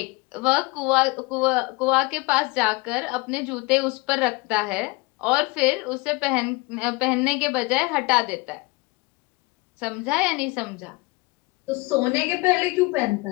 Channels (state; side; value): quieter; right; 24.8 dB